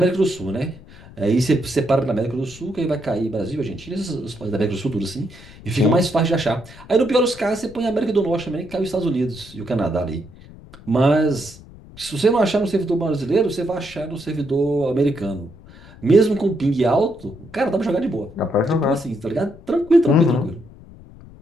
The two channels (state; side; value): noise; left; rumble, 20 dB below the sound